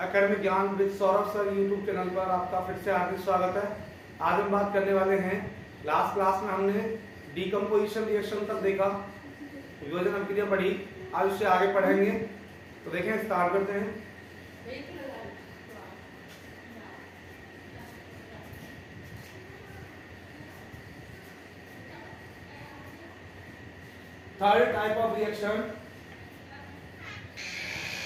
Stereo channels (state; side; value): identical; both; correlation 1.00